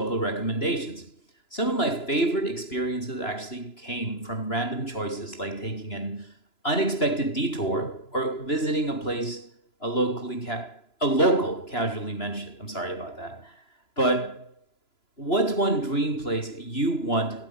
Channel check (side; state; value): right; late; 2.9 ms